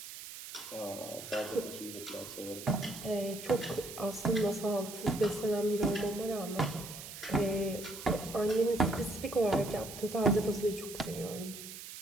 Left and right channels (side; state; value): right; noise; hiss, 11 dB below the sound